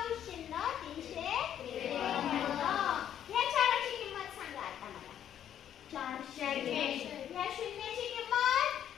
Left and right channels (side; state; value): right; quieter; 10.1 dB